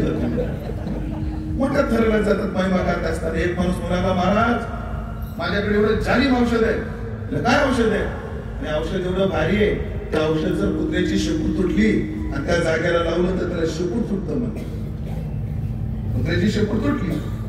मोठ्या थराला जातात महिमा गात असतात. एक माणूस म्हणाला, महाराज माझ्याकडे एवढं जालिम औषध आहे. काय औषध आहे? आणि औषध एवढं भारी आहे, त्या औषध जर कुत्र्याची शेपूट तुटली आणि त्या जागेला लावलं तर त्याला शेपूट तुटतं. म्हणते कुत्र्याची शेपूट तुटली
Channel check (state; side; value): identical; both; correlation 1.00